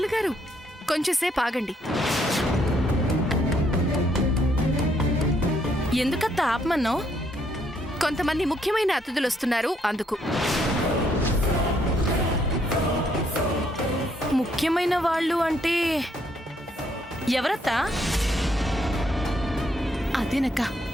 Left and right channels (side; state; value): both; normal; correlation 0.71